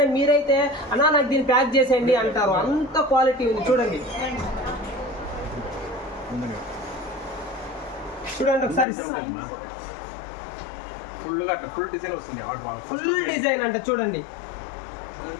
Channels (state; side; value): drops out; right; at 8.8 s